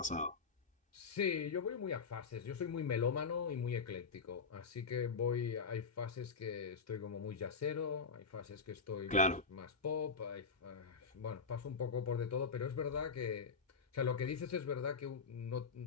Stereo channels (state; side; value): quieter; right; 5.1 dB